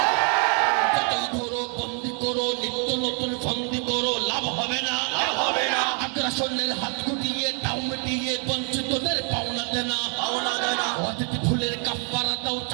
যতই ধরো বন্দি করো, নিত্য নতুন ফন্দি করো, লাভ হবে না, লাভ হবে না। আগ্রাসনের হাত গুটিয়ে, টাউ মিটিয়ে, বঞ্চিতদের পাওনা দেনা, পাওনা দেনা। অতিথি ফুলের কাফারা দাও,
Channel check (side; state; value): left; quieter; 39.6 dB